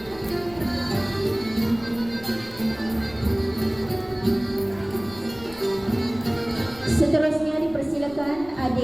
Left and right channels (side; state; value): left; noise; rumble, 20 dB below the sound